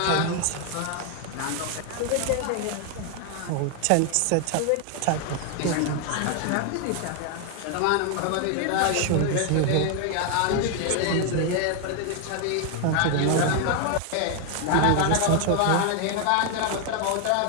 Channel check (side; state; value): both; different; correlation 0.00